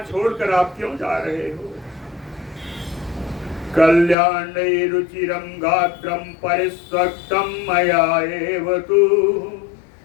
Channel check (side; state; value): right; drops out; at 4.2 s